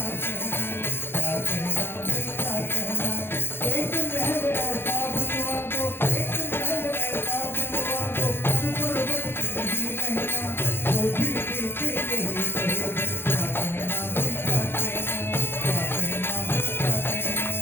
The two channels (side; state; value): right; late; 0.11 ms